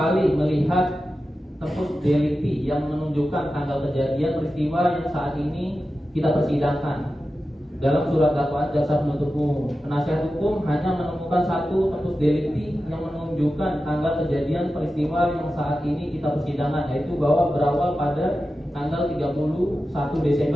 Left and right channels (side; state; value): both; normal; correlation 0.92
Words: melihat tempus delicti yang menunjukkan tanggal kejadian peristiwa yang saat ini kita persidangkan. Dalam surat dakwaan jaksa penuntut umum, penasihat hukum hanya menemukan satu tempus delicti yang menunjukkan tanggal kejadian peristiwa yang saat ini kita persidangan, yaitu bahwa berawal pada tanggal 31